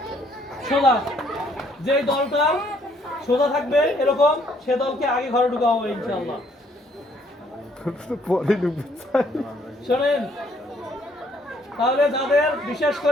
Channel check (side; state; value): both; normal; correlation 0.65